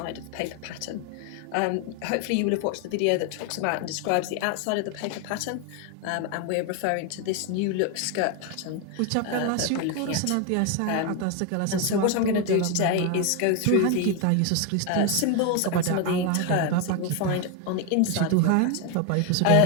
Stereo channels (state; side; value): different; both; correlation 0.01